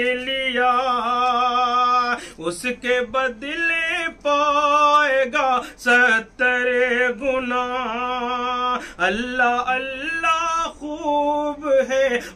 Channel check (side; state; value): both; identical; correlation 1.00